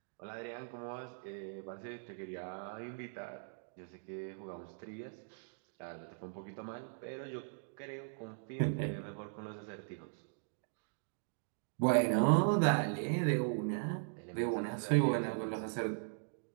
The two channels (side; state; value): left; silent; digital silence